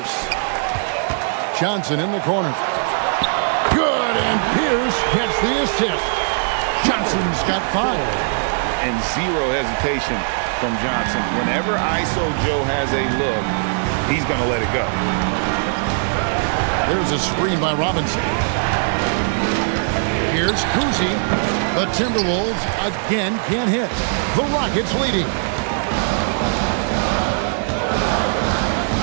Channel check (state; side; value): silent; left; 66 dB below the other